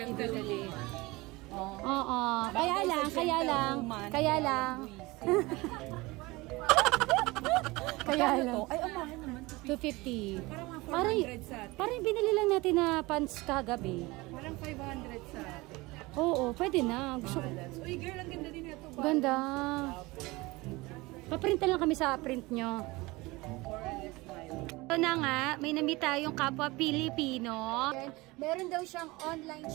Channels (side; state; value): left; quieter; 22.3 dB